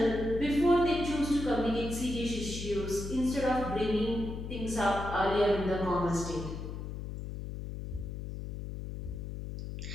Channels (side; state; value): left; noise; hum, 7 dB below the sound